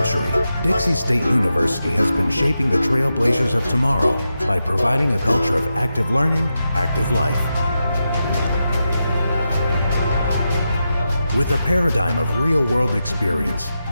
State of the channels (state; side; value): inverted; both; correlation -0.88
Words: Dixie State University has been shaping the trailblazers of tomorrow by providing a culture of active learning, active life. With a paradigm of real-world experience